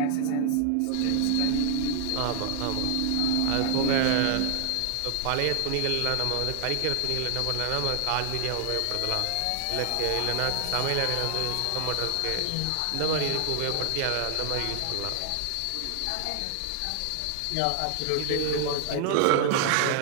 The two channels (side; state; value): both; different; correlation -0.01